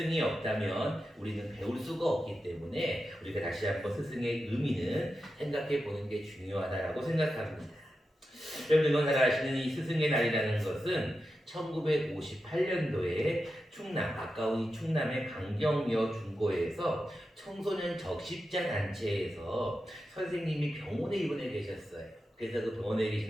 없다면 우리는 배울 수가 없기 때문에 우리가 다시 한번 스승의 의미는 생각해 보는 게 중요하다고 생각합니다. 여러분 잘 아시는 이 스승의 날이라는 것은 1958년도에 충남, 가까운 충남의 강경여 중고에서 청소년 적십자 단체에서 선생님이 병원에 입원해 계셨어요. 그래서 그 병원에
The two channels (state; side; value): normal; both; correlation 0.90